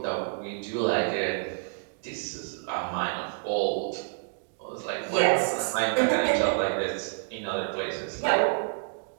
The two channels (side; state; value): left; silent; digital silence